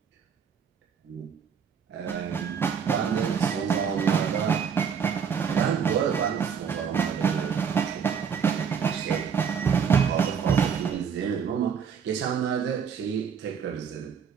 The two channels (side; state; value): left; quieter; 6.9 dB